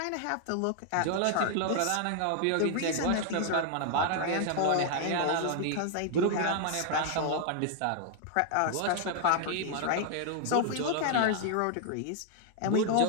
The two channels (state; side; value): different; both; correlation 0.00